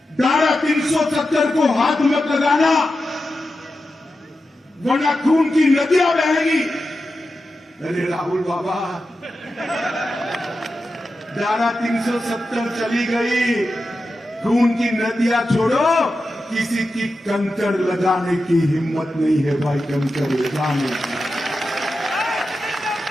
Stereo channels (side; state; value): both; normal; correlation 0.91